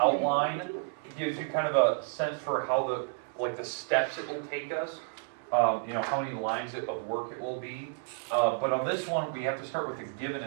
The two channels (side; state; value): left; silent; digital silence